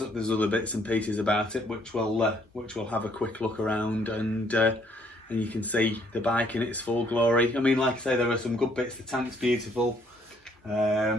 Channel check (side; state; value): both; normal; correlation 0.66